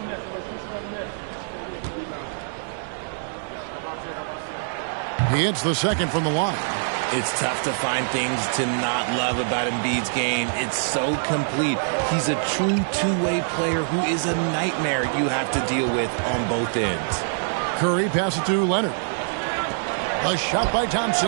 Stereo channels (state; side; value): silent; left; digital silence